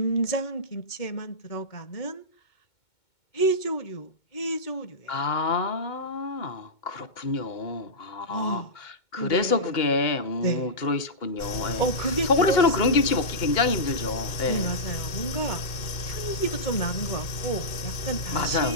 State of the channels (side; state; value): right; late; 2.2 ms